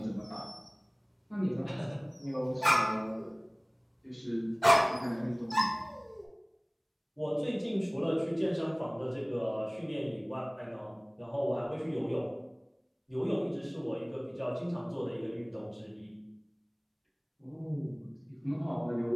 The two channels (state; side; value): identical; both; correlation 1.00